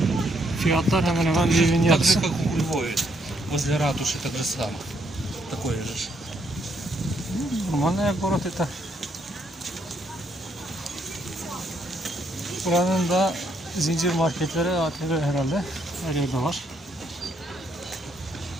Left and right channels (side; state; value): both; normal; correlation 0.73